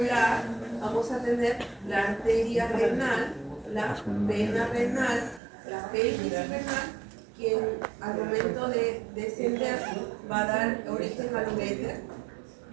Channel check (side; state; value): left; drops out; at 5.4 s